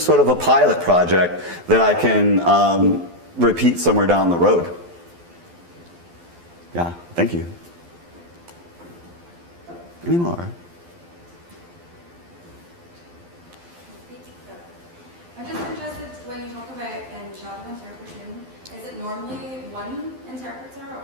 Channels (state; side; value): late; left; 12 ms